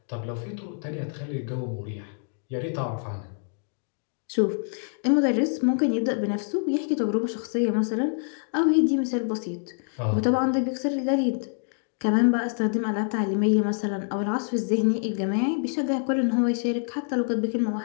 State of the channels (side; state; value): right; silent; 61 dB below the other